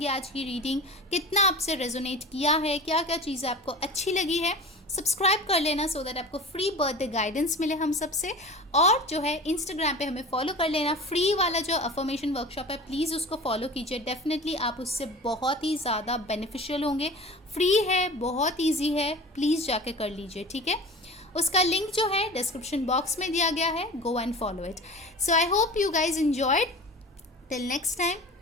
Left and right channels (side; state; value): both; normal; correlation 0.36